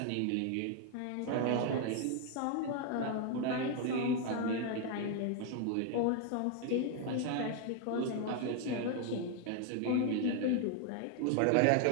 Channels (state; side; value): different; both; correlation 0.00